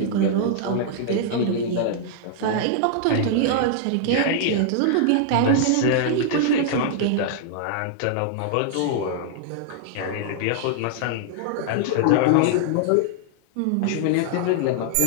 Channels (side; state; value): both; different; correlation -0.01